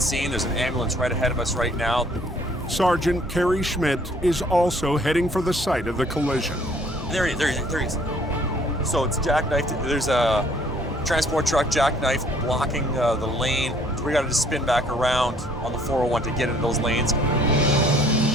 There's an ambulance right ahead of us right now. Sergeant Kerry Schmidt is also heading for the site of the collision. There he is. So it's jackknifed. There's a transport truck jackknifed blocking the lane. So we got to just spin back around on the 401 to get into those lanes.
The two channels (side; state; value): both; normal; correlation 0.60